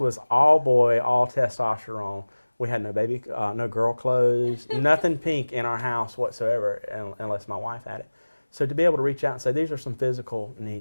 all boy, all testosterone. We had no girl clothes, nothing pink in our house whatsoever, unless my wife had it. So to be able to reach out and say, these are some physical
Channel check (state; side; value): inverted; both; correlation -1.00